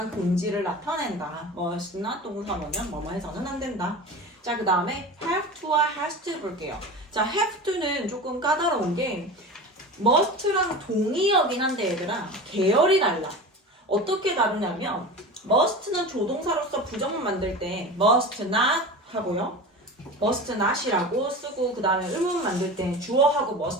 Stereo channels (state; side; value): normal; both; correlation 0.31